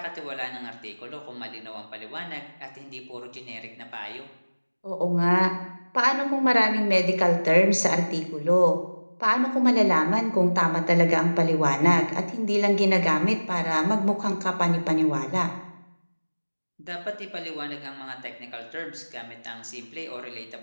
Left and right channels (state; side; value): inverted; both; correlation -1.00